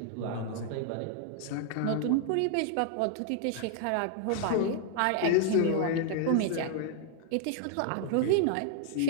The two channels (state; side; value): different; both; correlation 0.00